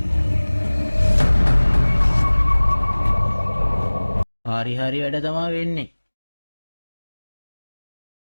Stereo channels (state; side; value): inverted; both; correlation -1.00